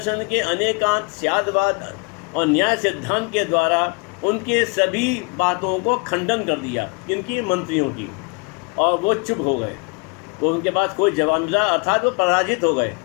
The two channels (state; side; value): quieter; right; 32.6 dB